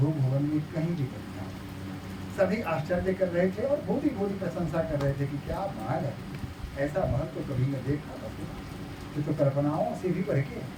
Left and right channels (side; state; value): both; identical; correlation 1.00